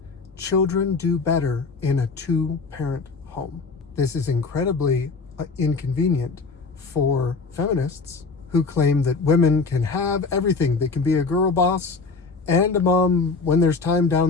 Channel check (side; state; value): right; quieter; 4.3 dB